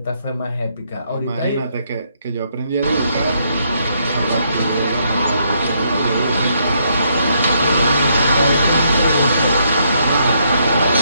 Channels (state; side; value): inverted; both; correlation -0.74